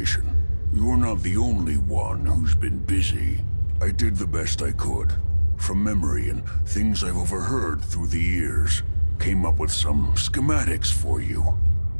You're not the only one who's been busy. I did the best I could. From memory and things I've overheard through the years. Came up with some schematics for you.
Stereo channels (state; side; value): inverted; both; correlation -1.00